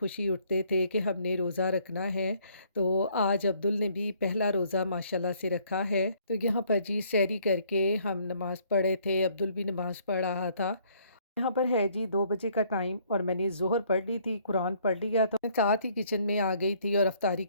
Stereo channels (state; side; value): inverted; both; correlation -0.64